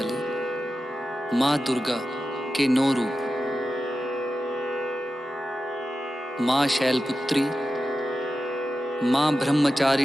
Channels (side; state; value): both; normal; correlation 0.92